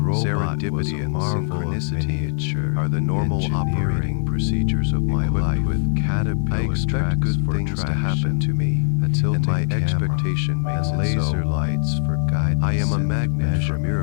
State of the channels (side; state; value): right; silent; 57 dB below the other